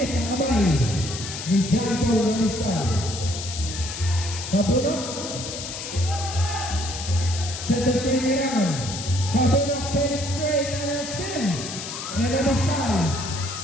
ang abay ni John Paul Rabiscal. Kapuno. Set the swing around. Kapuno, penetrate and sin. And Rabiscal.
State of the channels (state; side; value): noise; left; hiss, 8 dB below the sound